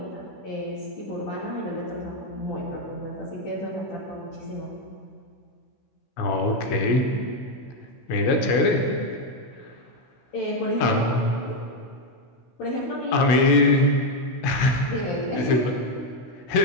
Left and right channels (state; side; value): late; right; 16 ms